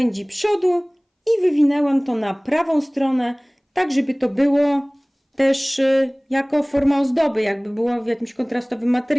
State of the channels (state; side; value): identical; both; correlation 1.00